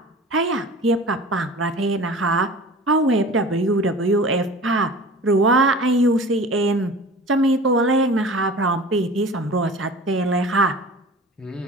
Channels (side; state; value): both; normal; correlation 0.40